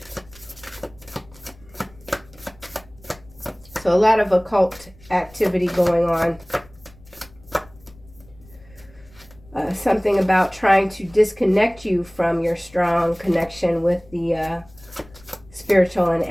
So a lot of occult activity going on. Something about trying to disconnect you from your strong connection with the spiritual and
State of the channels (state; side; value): noise; left; rumble, 24 dB below the sound